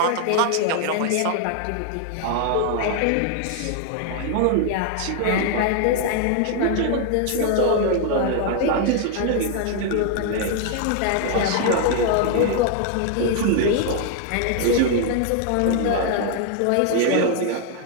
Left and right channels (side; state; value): both; different; correlation 0.00